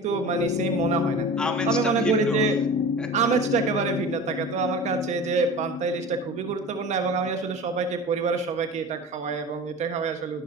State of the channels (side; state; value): both; normal; correlation 0.36